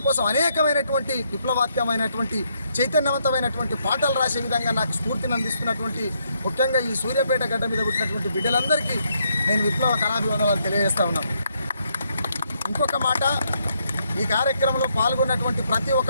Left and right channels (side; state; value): both; inverted; correlation -0.75